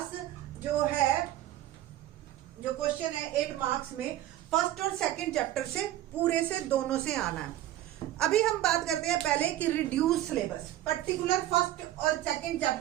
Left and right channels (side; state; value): left; quieter; 13.6 dB